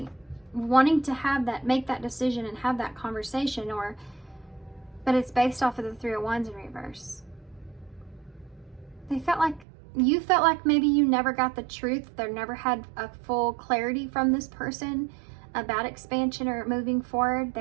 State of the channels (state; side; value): drops out; left; at 9.7 s